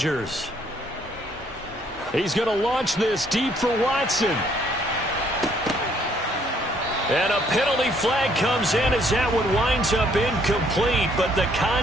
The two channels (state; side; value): normal; both; correlation 0.66